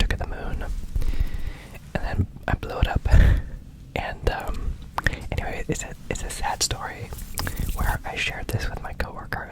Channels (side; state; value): both; identical; correlation 1.00